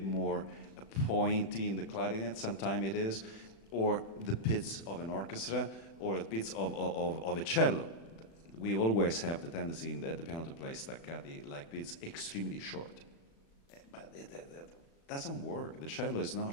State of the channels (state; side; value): late; right; 36 ms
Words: more pointy in the clarinet, sometimes it is, or the pits of an orchestra, or the pits of a cello. We always have the tendency at the piano to play staccati like pits extremely short. But it doesn't work. The cello is not